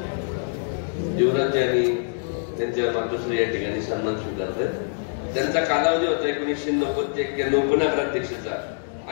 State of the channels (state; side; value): silent; right; digital silence